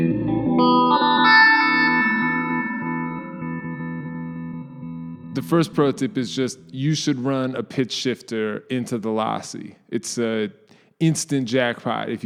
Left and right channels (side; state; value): both; identical; correlation 1.00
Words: The first pro tip is just you should run a pitch shifter into the Lossy. It's an instant jackpot if